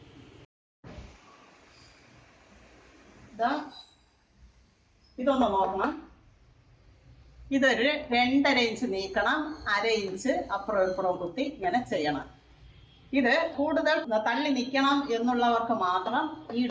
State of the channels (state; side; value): identical; both; correlation 1.00